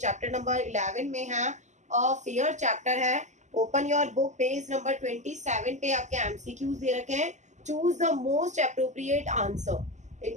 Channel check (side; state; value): left; late; 0.34 ms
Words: नंबर 11 में है और फेयर चैप्टर है. Open your book, page number 27 पे आपके एमसीक्यूज दे रखे हैं. Choose the most appropriate answer.